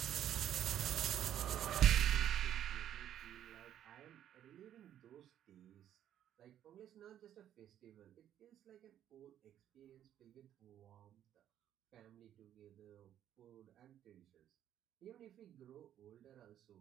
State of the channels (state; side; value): quieter; left; 10.8 dB